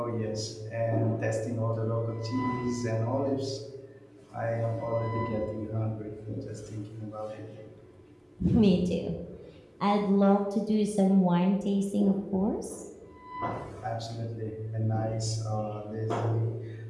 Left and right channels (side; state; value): both; identical; correlation 1.00